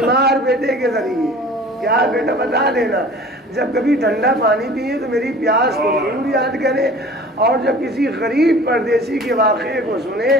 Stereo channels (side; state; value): both; normal; correlation 0.44